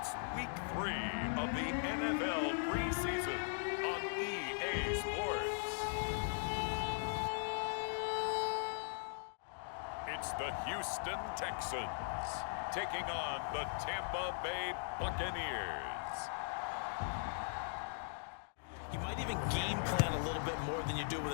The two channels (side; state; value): right; silent; digital silence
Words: Week 3 of the NFL Preseason on EA Sports. It's the Houston Texans taking on the Tampa Bay Buccaneers. You might even game plan a little bit more than you do with